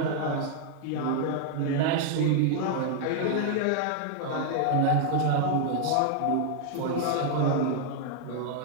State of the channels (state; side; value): different; both; correlation 0.00